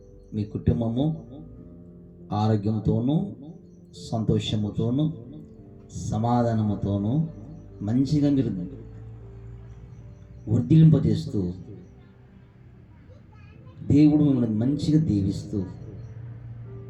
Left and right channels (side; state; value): both; identical; correlation 1.00